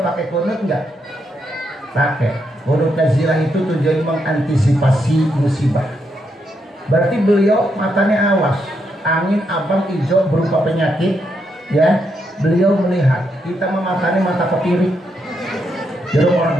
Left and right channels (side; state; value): both; normal; correlation 0.80